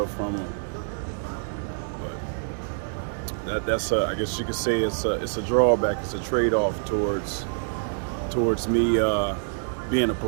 from them. But that's I guess you could say it's a drawback. It's a trade-off towards me being a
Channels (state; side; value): silent; left; digital silence